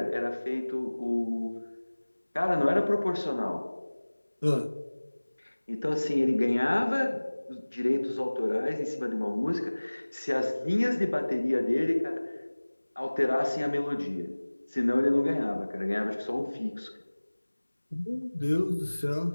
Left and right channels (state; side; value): inverted; both; correlation -1.00